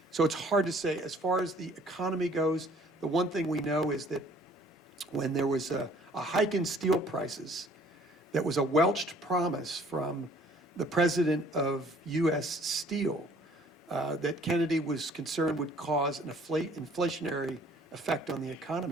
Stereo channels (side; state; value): both; normal; correlation 0.56